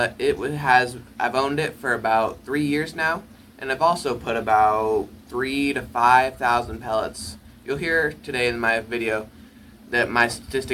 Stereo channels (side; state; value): both; identical; correlation 1.00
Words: I've owned it for about 3 years now, and I've also put about 3,000 to 5,000 pellets. You'll hear today in my video that my